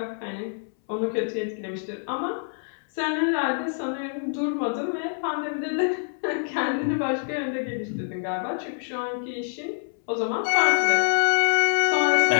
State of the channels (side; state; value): right; silent; 61 dB below the other